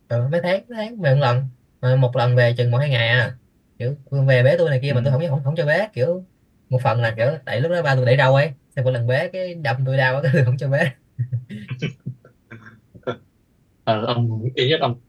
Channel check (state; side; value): identical; both; correlation 1.00